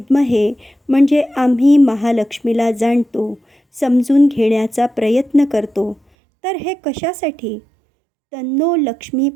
म्हणजे आम्ही महालक्ष्मीला जाणतो, समजून घेण्याचा प्रयत्न करतो. तर हे कशासाठी? तन्नो लक्ष्मी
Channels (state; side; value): drops out; left; at 6.0 s